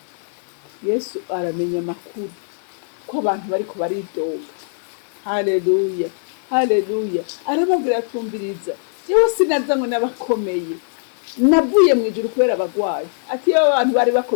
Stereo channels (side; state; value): right; silent; 62 dB below the other